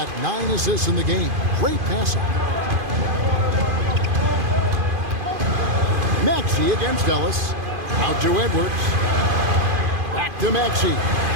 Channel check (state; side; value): late; left; 2.5 ms